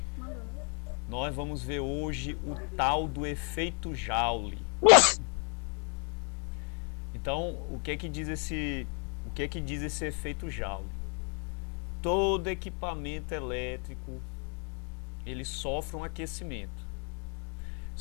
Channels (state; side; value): quieter; right; 38.2 dB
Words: Nós vamos ver hoje o tal do efeito Joule. Então, o que é que diz esse efeito Joule? Todo equipamento elétrico, ele sofre um aquecimento.